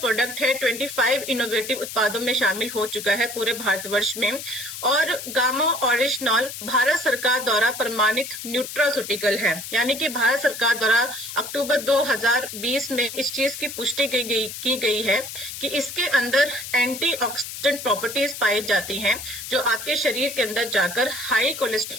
है 25 इनोवेटिव उत्पादों में शामिल हो चुका है पूरे भारतवर्ष में। और गामा ओरिजिनल भारत सरकार द्वारा प्रमाणित न्यूट्रास्यूटिकल है, यानी कि भारत सरकार द्वारा अक्टूबर 2020 में इस चीज की पुष्टि की गई है कि इसके अंदर एंटीऑक्सीडेंट प्रॉपर्टीज पाई जाती हैं जो आपके शरीर के अंदर जाकर हाई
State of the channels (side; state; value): left; noise; hiss, 9 dB below the sound